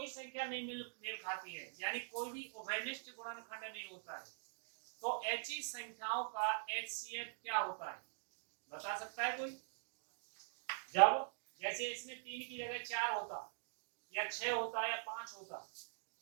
संख्या नहीं मेल खाती है, यानी कोई भी उभयनिष्ठ गुणनखंड नहीं होता है, तो ऐसी संख्याओं का एचसीएफ क्या होता है, बता सकता है कोई? जब जैसे इसमें 3 की जगह 4 होता या 6 होता या 5 होता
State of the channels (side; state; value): left; silent; digital silence